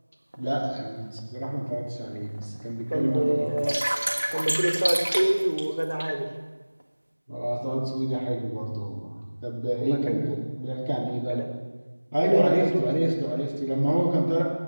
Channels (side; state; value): both; inverted; correlation -1.00